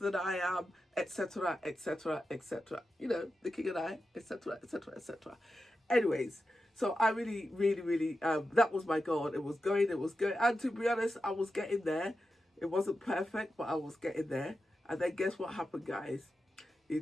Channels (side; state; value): both; normal; correlation 0.90